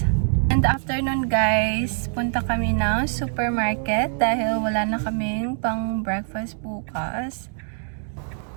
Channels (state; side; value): silent; left; digital silence